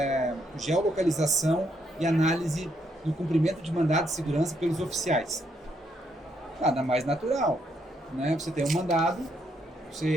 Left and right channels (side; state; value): both; normal; correlation 0.74